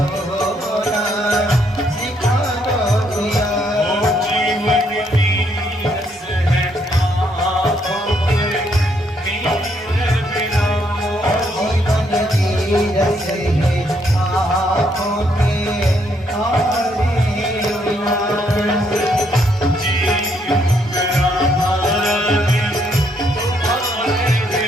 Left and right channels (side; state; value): both; normal; correlation 0.72